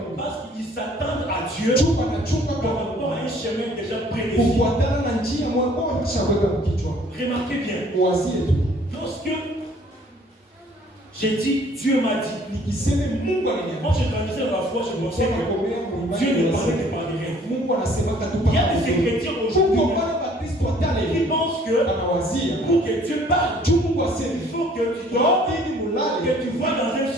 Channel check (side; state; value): both; normal; correlation 0.57